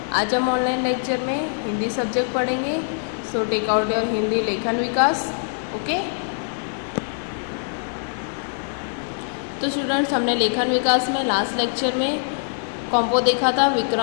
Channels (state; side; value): silent; right; 57 dB below the other